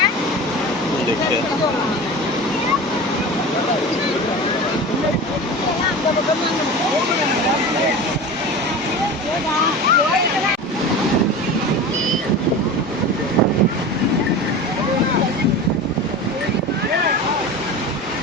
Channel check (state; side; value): normal; both; correlation 0.31